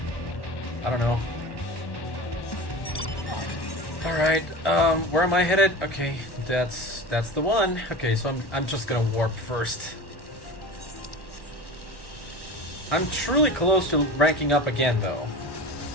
I don't know. Alright, where am I headed? Okay, that's the one. Okay, so I'm just gonna warp first. I'm truly close to ranking up again, though.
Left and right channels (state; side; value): late; right; 1.1 ms